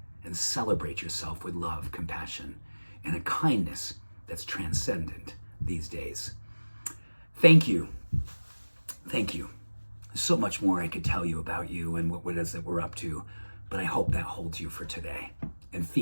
and celebrate yourself with love, compassion, and a kindness that's transcendent these days. Thank you. Thank you. There's so much more I could tell you about you and what it is that we're up to, but I hope that holds you for today and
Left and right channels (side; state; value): both; inverted; correlation -1.00